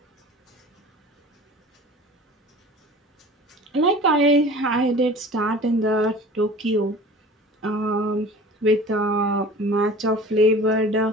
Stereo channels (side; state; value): both; normal; correlation 0.41